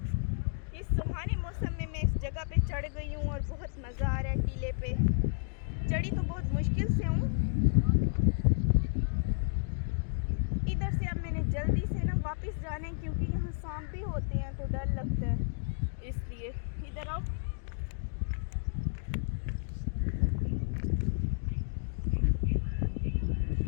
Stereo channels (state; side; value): silent; right; digital silence